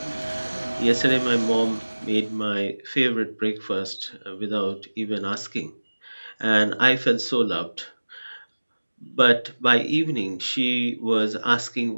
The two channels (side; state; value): both; inverted; correlation -1.00